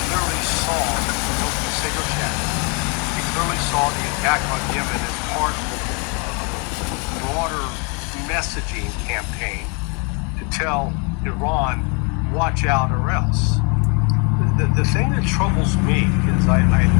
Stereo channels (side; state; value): right; quieter; 34.4 dB